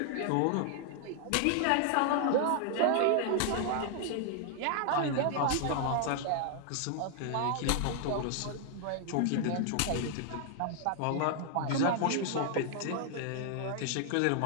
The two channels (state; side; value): different; both; correlation 0.00